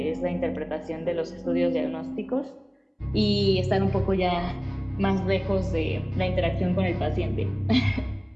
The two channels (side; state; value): both; identical; correlation 1.00